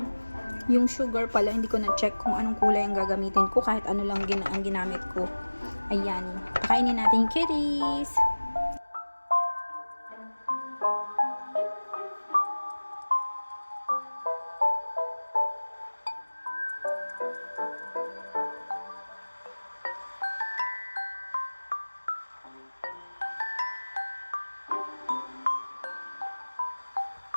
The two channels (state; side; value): inverted; both; correlation -1.00